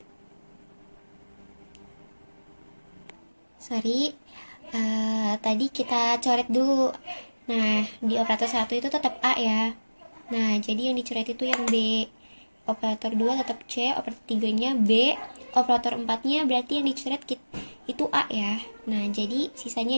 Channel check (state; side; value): inverted; both; correlation -1.00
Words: Sorry, tadi kita coret dulu. Nah, di operator 1 itu tetap A ya. Nah, jadi yang dicoret itu yang B. Operator 2 tetap C, operator 3-nya B, operator 4-nya berarti yang dicoret itu A ya. Nah, jadi sisanya